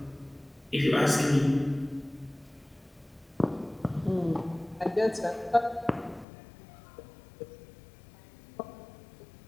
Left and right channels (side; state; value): right; drops out; at 6.2 s